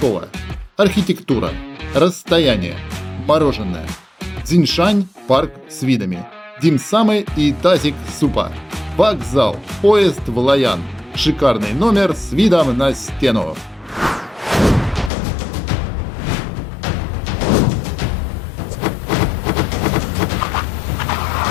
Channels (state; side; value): drops out; right; at 15.1 s